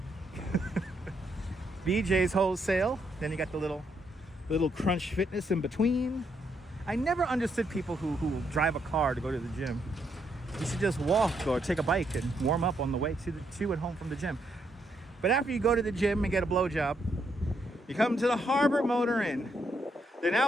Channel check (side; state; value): both; normal; correlation 0.76